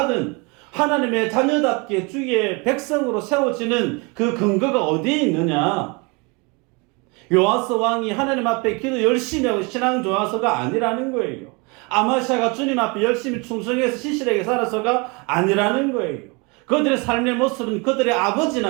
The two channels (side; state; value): left; quieter; 29.6 dB